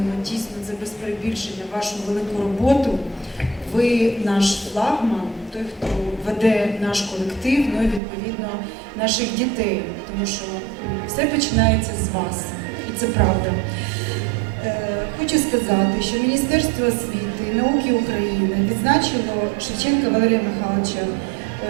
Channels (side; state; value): left; drops out; at 8.0 s